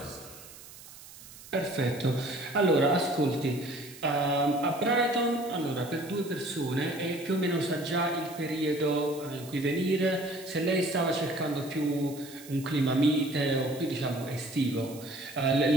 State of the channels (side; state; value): right; noise; hiss, 18 dB below the sound